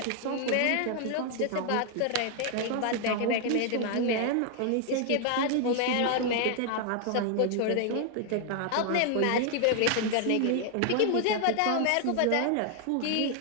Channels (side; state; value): both; different; correlation 0.00